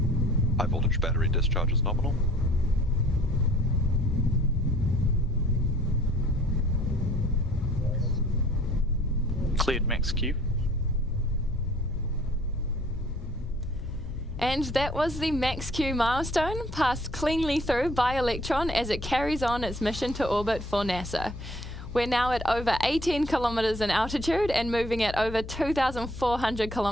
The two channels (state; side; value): noise; left; hum, 11 dB below the sound